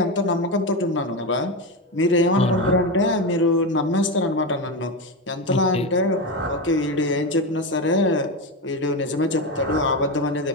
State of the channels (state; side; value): normal; both; correlation 0.15